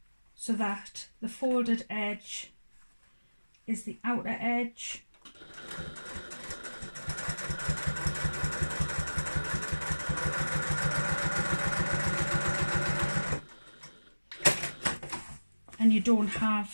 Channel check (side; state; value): both; inverted; correlation -1.00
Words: so that the folded edge is the outer edge. And you don't